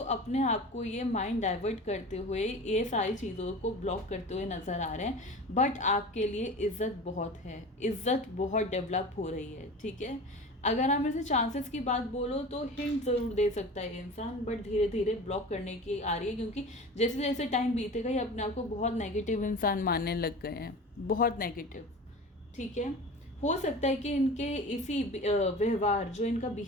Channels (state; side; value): normal; both; correlation 0.35